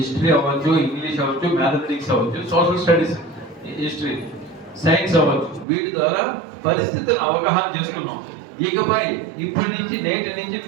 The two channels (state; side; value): drops out; left; at 5.7 s